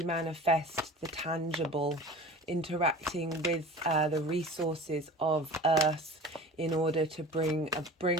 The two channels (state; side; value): normal; both; correlation 0.38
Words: manifest the tangible, interacting with the resources of earth in order to bring